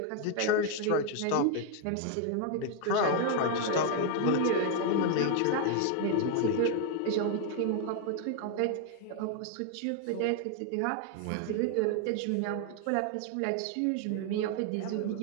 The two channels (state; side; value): different; both; correlation 0.00